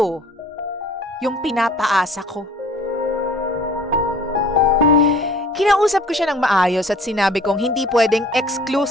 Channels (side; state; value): both; normal; correlation 0.51